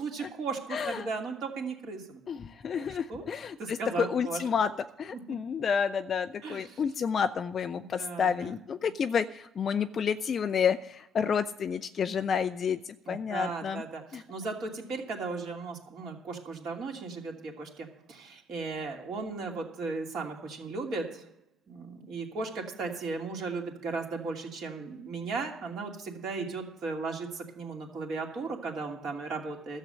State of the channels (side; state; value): right; quieter; 3.0 dB